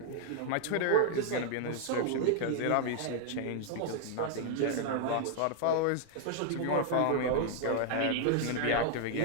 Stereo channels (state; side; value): different; both; correlation -0.01